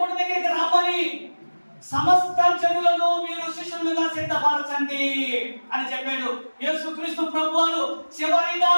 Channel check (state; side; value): inverted; both; correlation -1.00